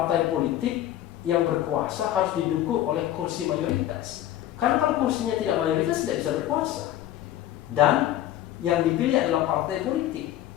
politik yang berkuasa harus didukung oleh kursi mayoritas. Karena kalau kursinya tidak mayoritas tidak bisa berkuasa. Dan yang dipilih adalah partai politik.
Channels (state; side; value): quieter; right; 12.9 dB